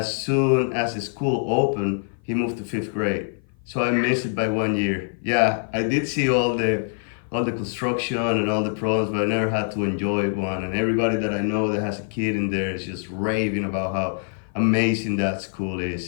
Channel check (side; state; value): right; silent; 55 dB below the other